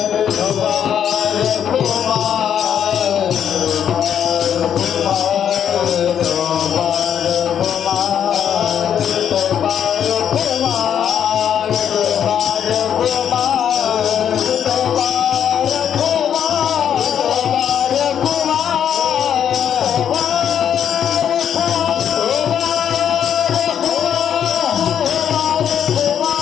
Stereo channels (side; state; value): right; quieter; 9.0 dB